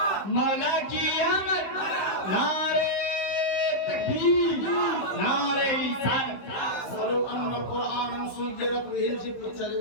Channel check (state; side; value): late; right; 15 ms